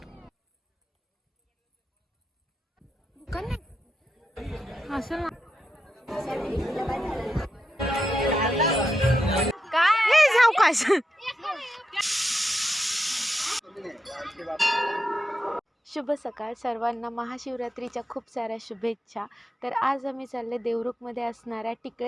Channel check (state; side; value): normal; both; correlation 0.86